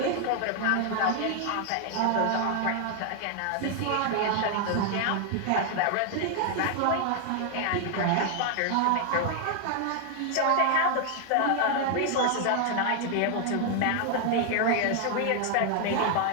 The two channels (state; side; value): different; both; correlation 0.00